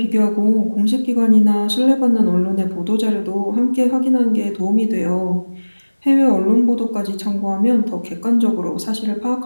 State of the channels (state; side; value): inverted; both; correlation -1.00